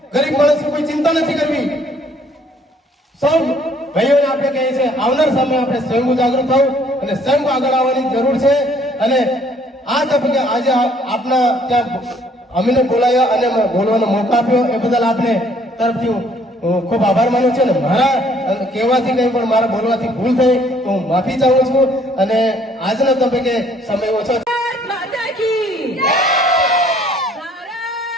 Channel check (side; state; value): both; normal; correlation 0.62